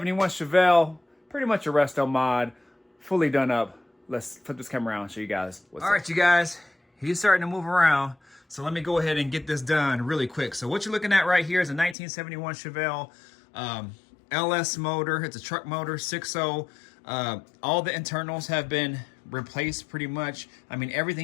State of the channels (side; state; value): right; drops out; at 12.0 s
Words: Chevelle, pretty much a resto mod, fully done up. Let's flip this camera around and show you guys what's up. All right, you guys, he's starting to move around. So let me go ahead and get this done really quick. So what you're looking at right here is a 1971 Chevelle LS motor. It's a truck motor, 6.0. All the internals have been replaced pretty much. I mean,